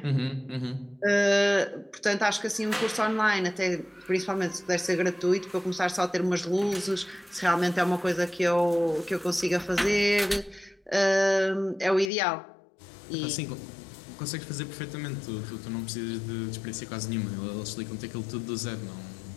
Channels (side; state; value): right; drops out; at 12.1 s